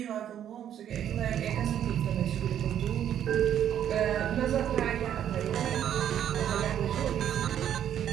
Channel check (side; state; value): left; quieter; 10.1 dB